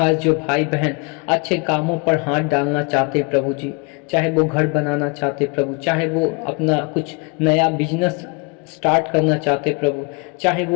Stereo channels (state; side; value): quieter; right; 30.8 dB